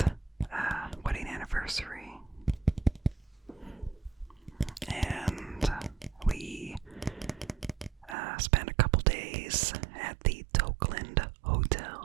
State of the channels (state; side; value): drops out; left; at 8.2 s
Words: wedding anniversary, and we spent a couple days at the Tokeland